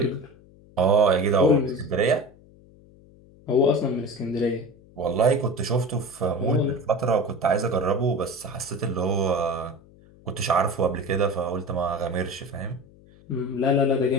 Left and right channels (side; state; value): left; noise; hum, 25 dB below the sound